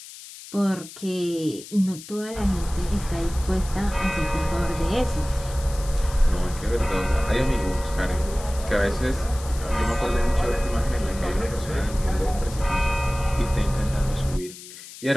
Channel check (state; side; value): noise; left; hiss, 15 dB below the sound